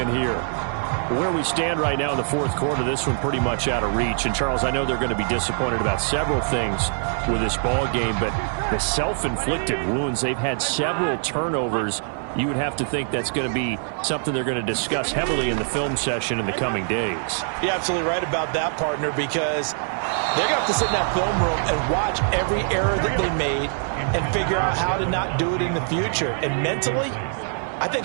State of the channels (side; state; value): left; silent; 62 dB below the other